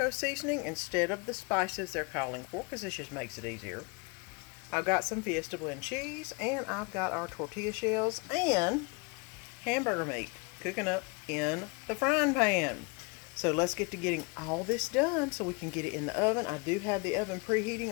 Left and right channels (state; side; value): quieter; right; 31.0 dB